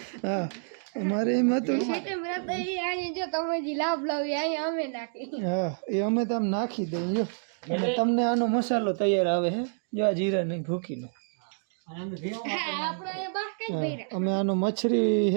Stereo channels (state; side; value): silent; left; digital silence